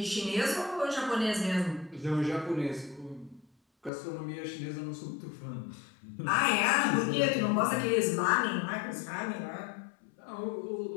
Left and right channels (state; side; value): drops out; right; at 3.9 s